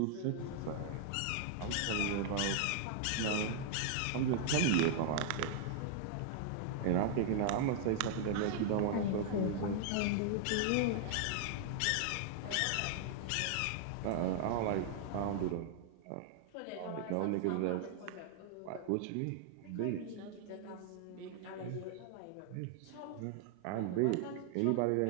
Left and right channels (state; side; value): different; both; correlation 0.00